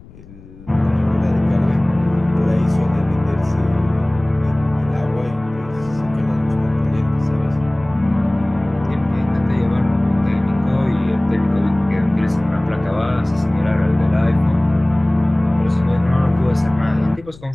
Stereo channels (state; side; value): noise; left; rumble, 21 dB below the sound